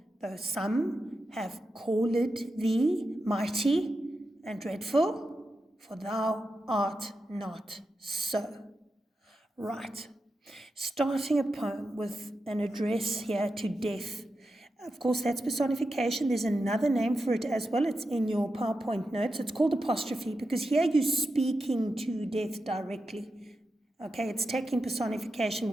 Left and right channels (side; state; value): both; normal; correlation 0.89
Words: though some have called thee mighty and dreadful, for thou art not so. Right. Starting a poem with an address here to death. Of course, that's personification. There's another name for it as well. It's in your PowerPoint notes. It's called apostrophe, because here you're speaking to death directly. Okay, it's taking